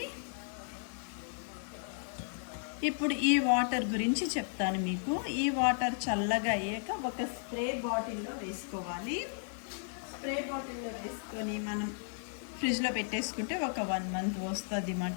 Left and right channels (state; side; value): silent; right; digital silence